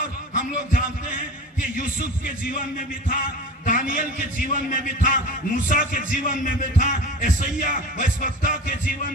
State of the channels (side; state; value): both; normal; correlation 0.35